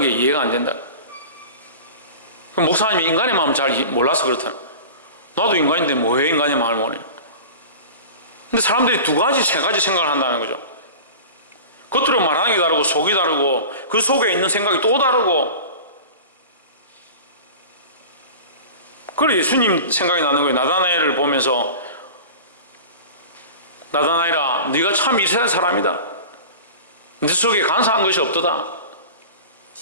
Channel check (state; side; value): inverted; both; correlation -0.35